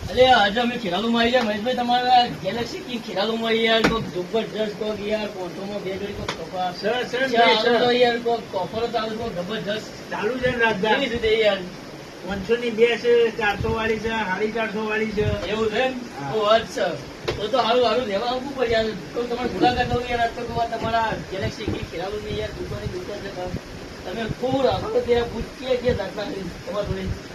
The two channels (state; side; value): identical; both; correlation 1.00